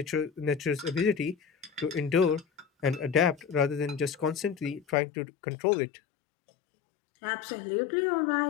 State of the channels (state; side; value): drops out; right; at 5.0 s